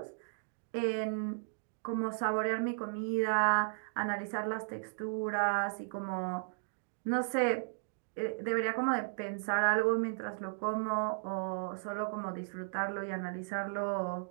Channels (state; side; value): silent; left; digital silence